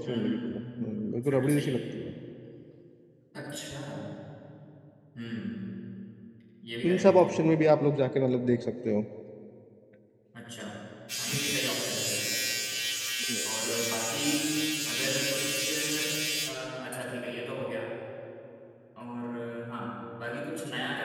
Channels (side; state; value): both; identical; correlation 1.00